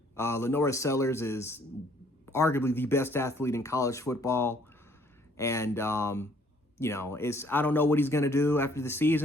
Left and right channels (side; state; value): both; normal; correlation 0.62